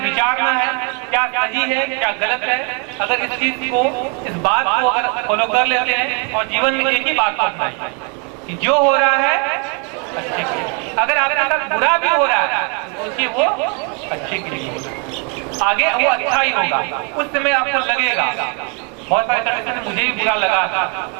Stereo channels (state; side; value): quieter; left; 35.9 dB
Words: विचारना है, क्या सही है क्या गलत है। अगर इस चीज को, इस बात को अगर फॉलो कर लेते हैं और जीवन में एक ही बात को अपनाइए कि जो हो रहा है अच्छे के लिए, अगर आपके साथ बुरा भी हो रहा है तो सोचिए वो अच्छे के लिए हो रहा है, आगे वो अच्छा ही होगा। उस समय आपको लगेगा बहुत सारे कंडक्टर में मुझे भी बुरा